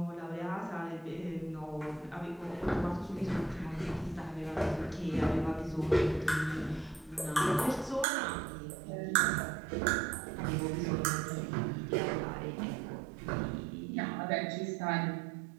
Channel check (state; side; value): drops out; left; at 8.1 s